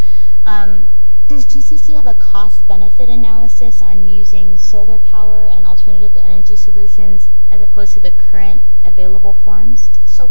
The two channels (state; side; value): inverted; both; correlation -1.00